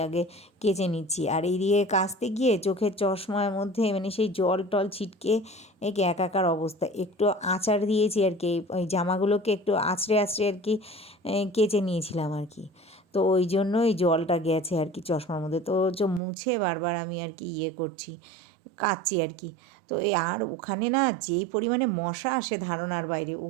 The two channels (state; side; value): drops out; left; at 16.2 s